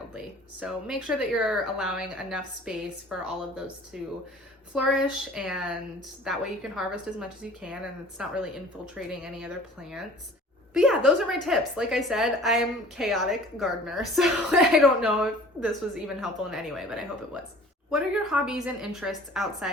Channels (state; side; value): normal; both; correlation 0.47